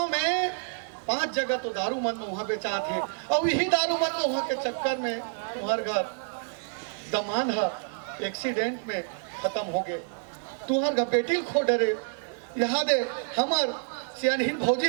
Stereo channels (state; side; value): silent; left; digital silence